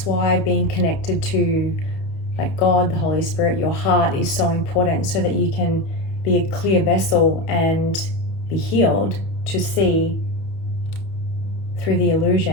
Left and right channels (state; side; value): late; right; 31 ms